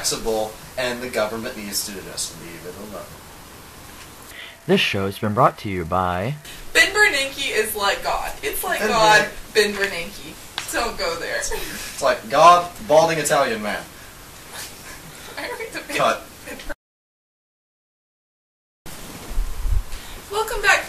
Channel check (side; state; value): both; identical; correlation 1.00